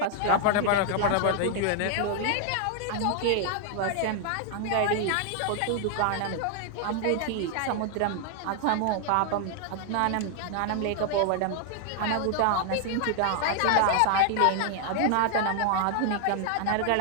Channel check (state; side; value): different; both; correlation 0.00